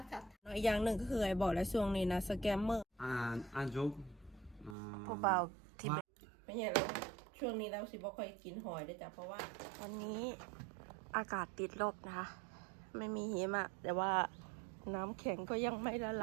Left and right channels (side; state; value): left; drops out; at 4.8 s